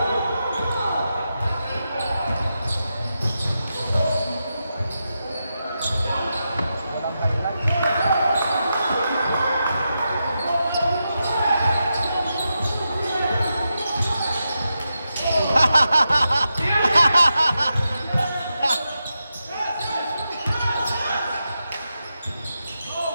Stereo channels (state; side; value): inverted; both; correlation -0.87